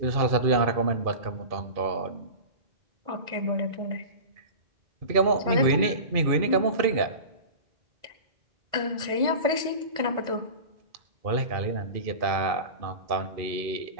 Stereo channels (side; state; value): left; late; 2.4 ms